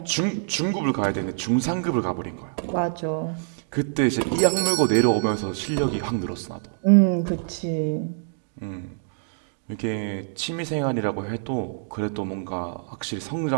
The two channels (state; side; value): silent; left; digital silence